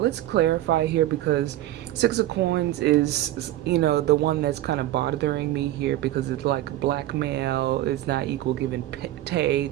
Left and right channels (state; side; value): quieter; left; 14.7 dB